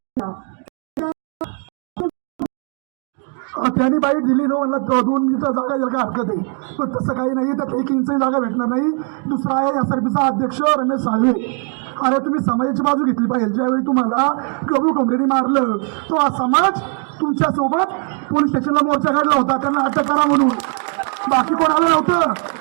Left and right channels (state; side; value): quieter; left; 37.9 dB